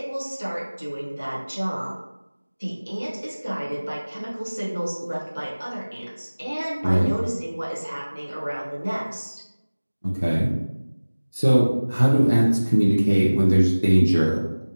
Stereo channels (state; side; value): inverted; both; correlation -1.00